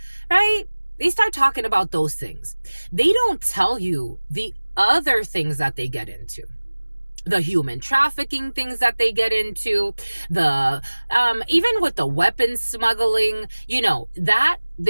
right? They start talking about those things. They don't tell you the other things that they get into, the human trafficking things that they get into, the even with the weapons smuggling, you know, that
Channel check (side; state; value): both; inverted; correlation -1.00